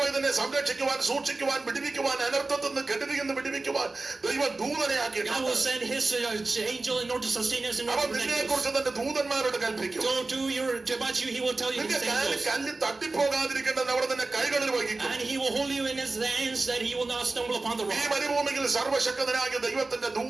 ഇതിനെ സംരക്ഷിക്കുവാൻ സൂക്ഷിക്കുവാൻ വിടുവിക്കുവാൻ അനർത്ഥത്തിൽ നിന്ന് കെടുതിയിൽ നിന്ന് വിടുവിക്കുവാൻ ദൈവം ദൂതനെ God will ആക്കിയിട്ടുണ്ട്. send his angel in order to sustain us and അവൻ protect നിന്നെ us. കുറിച്ച് തന്റെ ദൂതന്മാരോട് കൽപ്പിക്കും. So about you, he will tell you നിന്റെ his കാലിൽ angels. കല്ല് തട്ടിപ്പോകാതിരിക്കേണ്ടത് അവിടെ തന്നെ കൈകളിൽ വഹിക്കും. And he will hold you in his hands that he will not stumble upon the ഈ rock. മരുഭൂമിയിൽ സർവശക്തനായ ദൈവത്തിന്റെ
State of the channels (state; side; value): quieter; left; 3.4 dB